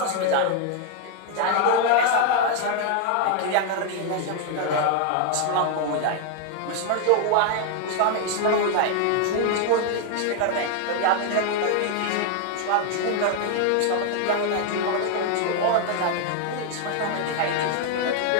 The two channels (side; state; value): both; different; correlation 0.00